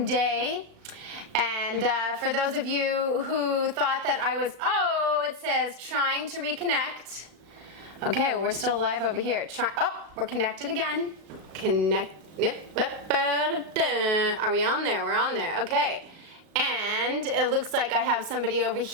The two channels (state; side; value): late; left; 35 ms